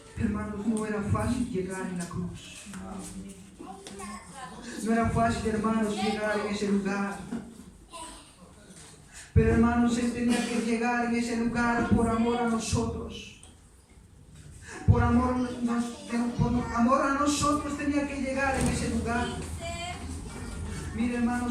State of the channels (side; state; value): both; identical; correlation 1.00